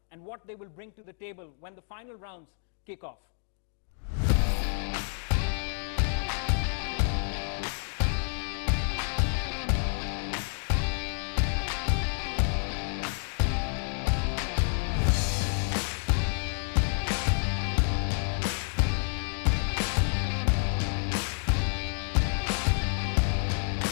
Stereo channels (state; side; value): silent; right; 58 dB below the other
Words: and what they will bring to the table when the final rounds kick off.